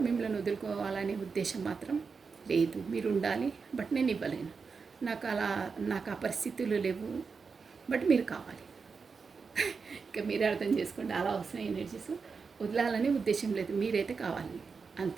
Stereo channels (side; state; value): left; quieter; 5.1 dB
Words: మిమ్మల్ని వదులుకోవాలనే ఉద్దేశం మాత్రం లేదు, మీరు ఉండాలి బట్ నేను ఇవ్వలేను, నాకు ఆ పరిస్థితులు లేవు, బట్ మీరు కావాలి. ఇక మీరే అర్థం చేసుకోండి, అలా వస్తున్నాయి ఎనర్జీస్. వదలాలనే ఉద్దేశం లేదు, మీరైతే కావాలి